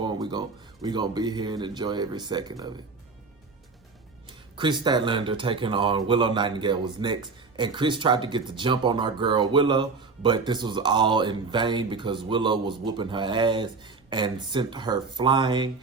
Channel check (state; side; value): quieter; left; 4.4 dB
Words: we're gonna be here and enjoy every second of it. Chris Statlander taking on Willow Nightingale was next, and Chris tried to get the jump on our girl Willow, but this was all in vain because Willow was whooping her ass and sent her flying